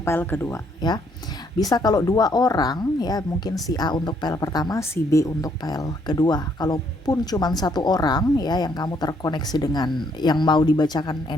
kedua, ya. Bisa kalau 2 orang, ya, mungkin si A untuk pile pertama, si B untuk pile kedua. Kalaupun cuma 1 orang, ya, yang kamu terkoneksi dengan yang mau dibacakan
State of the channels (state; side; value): normal; both; correlation 0.69